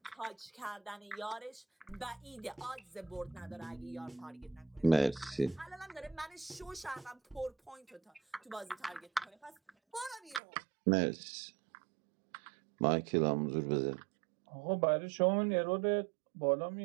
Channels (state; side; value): drops out; left; at 10.4 s